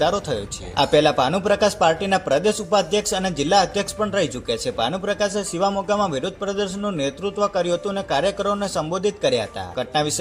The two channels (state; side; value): identical; both; correlation 1.00